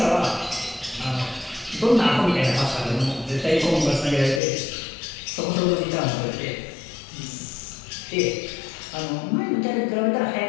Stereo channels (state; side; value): drops out; right; at 4.4 s